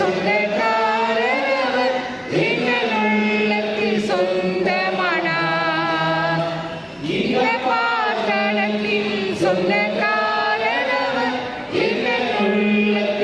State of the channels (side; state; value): both; identical; correlation 1.00